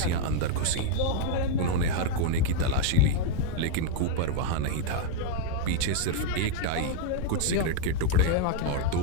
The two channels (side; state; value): both; different; correlation 0.00